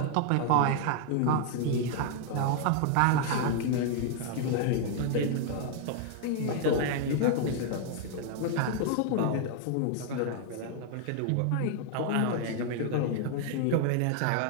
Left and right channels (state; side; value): different; both; correlation 0.00